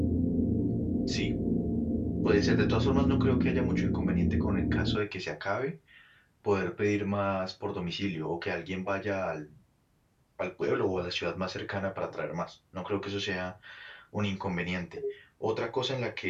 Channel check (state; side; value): identical; both; correlation 1.00